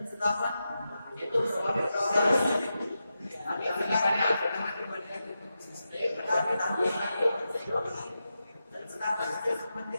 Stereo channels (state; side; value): inverted; both; correlation -0.90